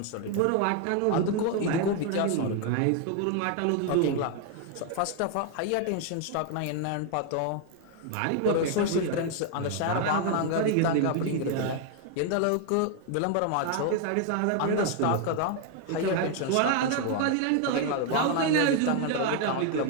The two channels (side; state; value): both; different; correlation 0.00